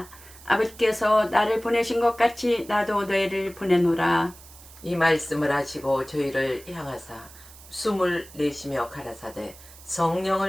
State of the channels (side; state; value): right; noise; hiss, 20 dB below the sound